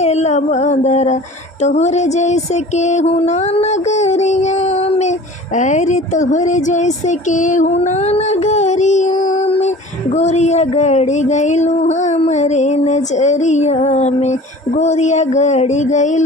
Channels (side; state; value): both; normal; correlation 0.43